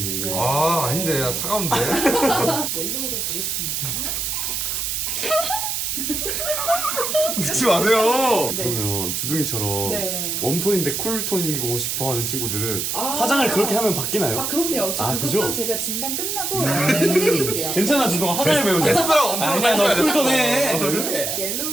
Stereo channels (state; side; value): noise; right; hiss, 1 dB below the sound